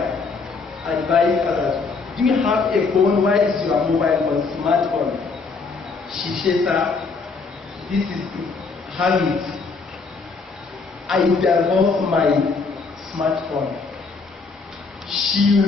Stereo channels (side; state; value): right; quieter; 4.5 dB